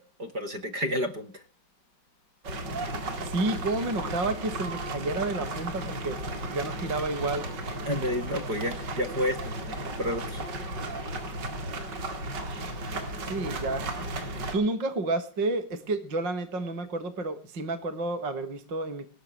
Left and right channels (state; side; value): late; left; 5.3 ms